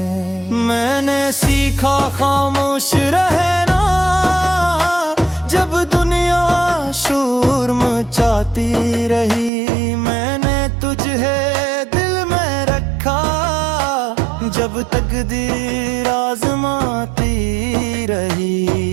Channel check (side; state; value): left; drops out; at 9.5 s